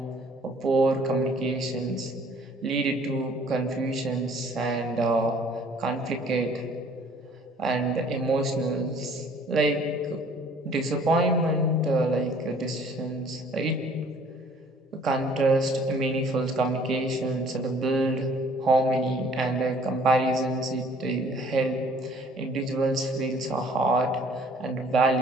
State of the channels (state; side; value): normal; both; correlation 0.56